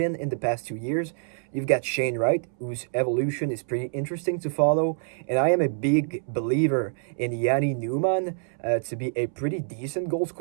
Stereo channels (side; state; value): left; silent; 61 dB below the other